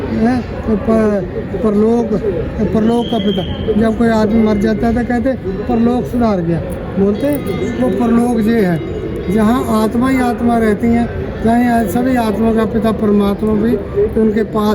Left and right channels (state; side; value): identical; both; correlation 1.00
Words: है। तो परलोक का पिता। जब कोई आदमी मर जाता है तो कहते परलोक सुधार गया, बोलते वो परलोक ये है, जहाँ आत्मा ही आत्मा रहती हैं। जहाँ सभी आत्मा का पिता परमात्मा भी उनके